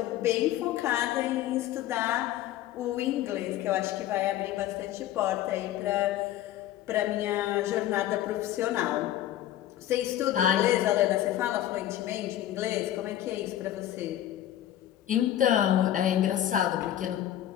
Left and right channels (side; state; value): right; quieter; 12.6 dB